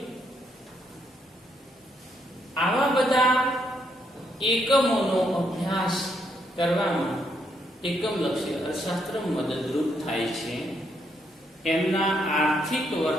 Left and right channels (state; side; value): normal; both; correlation 0.76